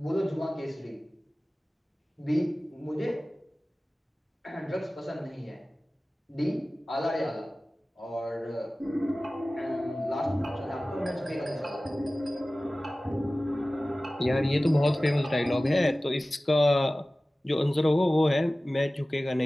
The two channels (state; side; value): normal; both; correlation 0.97